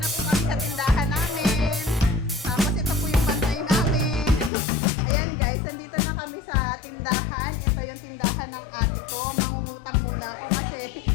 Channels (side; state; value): right; drops out; at 4.5 s